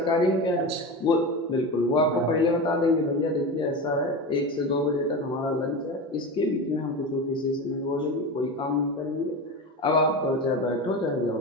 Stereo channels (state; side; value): normal; both; correlation 0.24